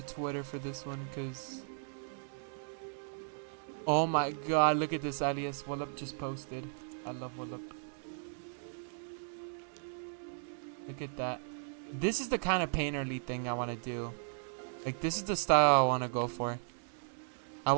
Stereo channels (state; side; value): silent; left; digital silence